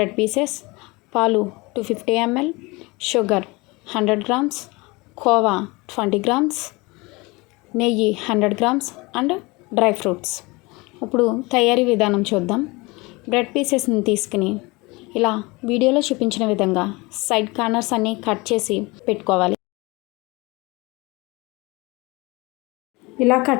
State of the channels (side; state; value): right; quieter; 24.6 dB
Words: పీసెస్, పాలు 250 ml, sugar 100 grams, khoa 20 grams, నెయ్యి 100 grams అండ్ డ్రై ఫ్రూట్స్. ఇప్పుడు తయారీ విధానం చూద్దాం. బ్రెడ్ పీసెస్ని తీసుకుని ఇలా వీడియోలో చూపించిన విధంగా సైడ్ కార్నర్స్ అన్నీ కట్ చేసి పెట్టుకోవాలి. ఇలా